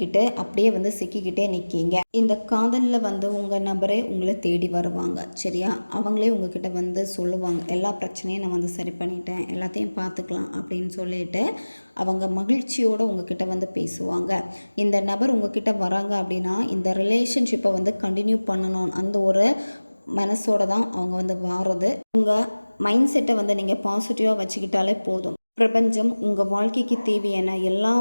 அப்படியே வந்து சிக்கிக்கிட்டே நிற்கீங்க. இந்த காதலில் வந்து உங்கள் நபரே உங்களை தேடி வருவாங்க. சரியா? அவங்களே உங்ககிட்ட வந்து சொல்லுவாங்க, எல்லா பிரச்சனையும் நான் வந்து சரி பண்ணிட்டேன், எல்லாத்தையும் பார்த்துக்கலாம் அப்படின்னு சொல்லிட்டு அவங்க மகிழ்ச்சியோடு உங்ககிட்ட வந்து பேசுவாங்க. இந்த நபர் உங்ககிட்ட வராங்க அப்படின்னா இந்த ரிலேஷன்ஷிப்பை வந்து கண்டினியூ பண்ணணும் அந்த ஒரு மனசோட தான் அவங்க வந்து வாரது. உங்கள் மைண்ட் செட்டை வந்து நீங்கள் பாசிட்டிவாக வச்சுக்கிட்டாலே போதும். பிரபஞ்சம் உங்கள் வாழ்க்கைக்கு தேவையான எல்லா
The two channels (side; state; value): both; inverted; correlation -1.00